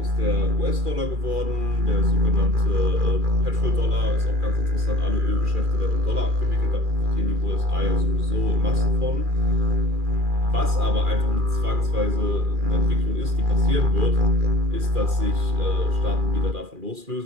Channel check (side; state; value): left; late; 2.4 ms